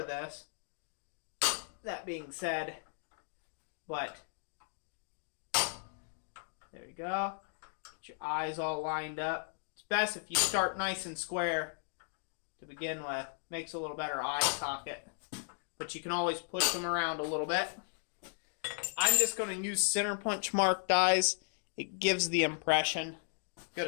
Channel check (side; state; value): right; silent; 54 dB below the other